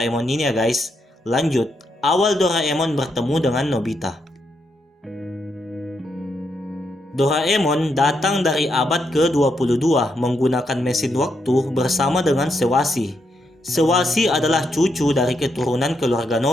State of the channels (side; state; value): both; normal; correlation 0.80